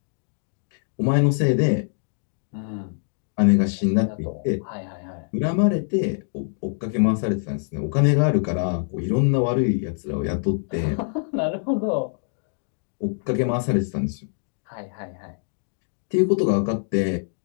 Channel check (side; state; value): right; silent; digital silence